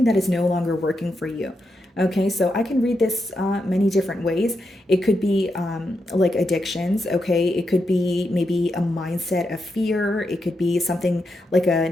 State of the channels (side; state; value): both; normal; correlation 0.85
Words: that is no longer working for you. Okay, so I can read this many different ways. It could be like addictions, okay? It could be maybe a mindset of fear. It could be something like a